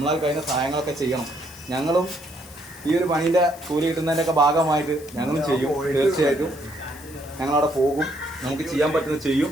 കഴിയുന്ന സഹായങ്ങളൊക്കെ ചെയ്യണം. ഞങ്ങളും ഈ ഒരു പണീൻ്റെ കൂലി കിട്ടുന്നതിൻ്റെയൊക്കെ ഭാഗമായിട്ട് ഞങ്ങളും ചെയ്യും. തീർച്ചയായിട്ടും ഞങ്ങളവിടെ പോകും. നമുക്ക് ചെയ്യാൻ പറ്റുന്നത് ചെയ്യും.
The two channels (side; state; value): left; noise; hiss, 20 dB below the sound